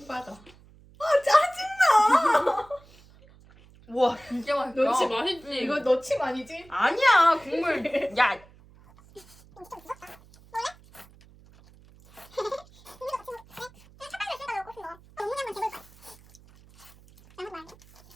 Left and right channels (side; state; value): right; noise; hum, 25 dB below the sound